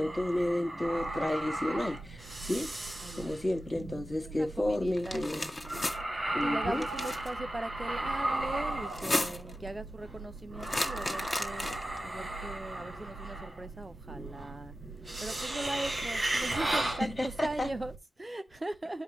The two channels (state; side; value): normal; both; correlation 0.93